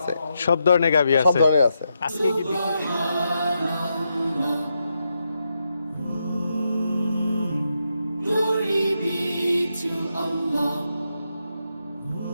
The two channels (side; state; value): both; inverted; correlation -0.84